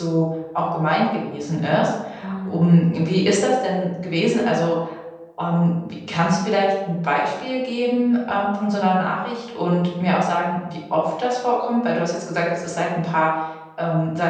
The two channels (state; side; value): identical; both; correlation 1.00